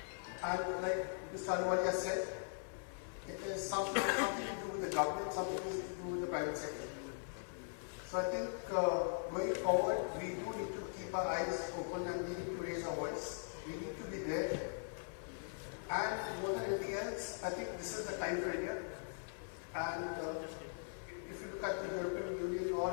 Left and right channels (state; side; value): silent; right; 51 dB below the other